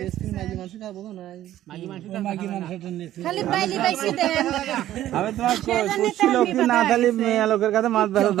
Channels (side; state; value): left; quieter; 13.1 dB